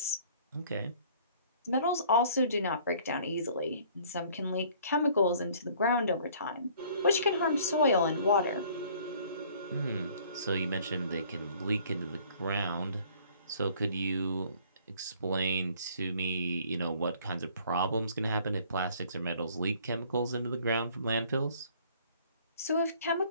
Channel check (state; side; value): inverted; both; correlation -0.56